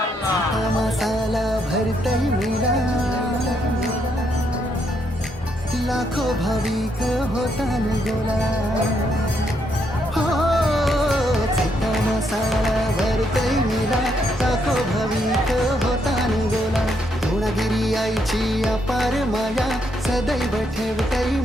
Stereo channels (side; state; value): both; normal; correlation 0.76